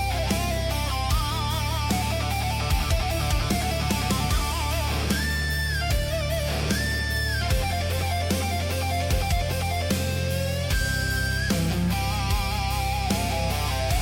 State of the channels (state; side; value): identical; both; correlation 1.00